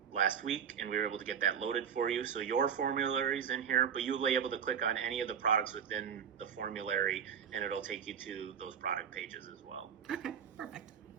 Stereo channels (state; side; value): quieter; left; 7.8 dB